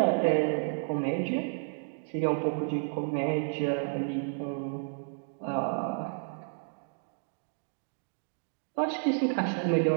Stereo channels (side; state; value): left; silent; digital silence